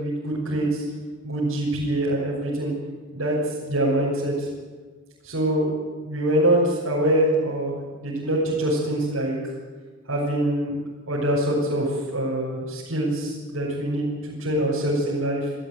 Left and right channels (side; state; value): both; normal; correlation 0.24